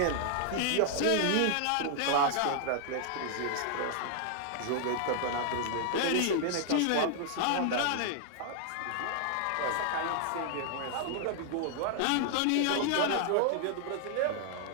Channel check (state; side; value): different; both; correlation 0.00